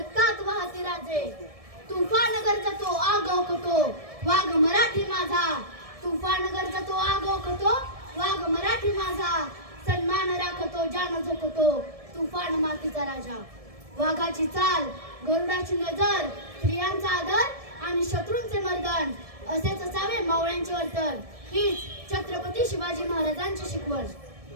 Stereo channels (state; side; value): late; left; 1.7 ms